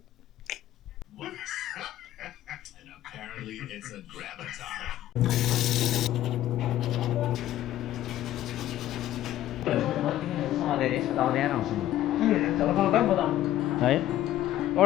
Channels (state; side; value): quieter; right; 13.4 dB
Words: And apparently it's a graviton. Right?